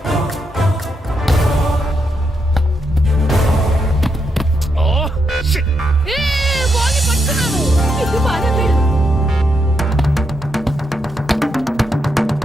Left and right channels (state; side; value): normal; both; correlation 0.81